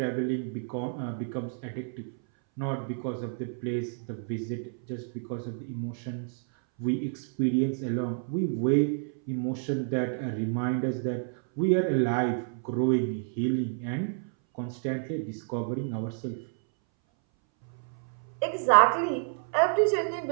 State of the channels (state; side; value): silent; left; 58 dB below the other